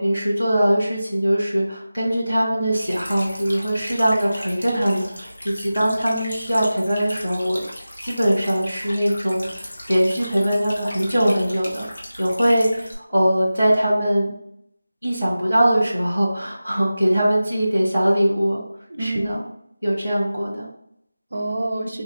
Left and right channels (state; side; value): inverted; both; correlation -0.95